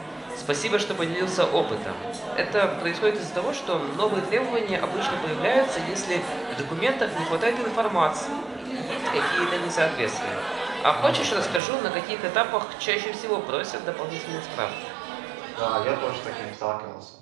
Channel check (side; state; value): left; drops out; at 11.6 s